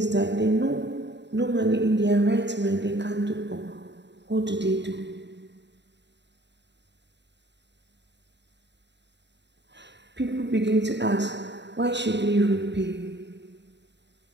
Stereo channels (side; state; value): left; late; 0.51 ms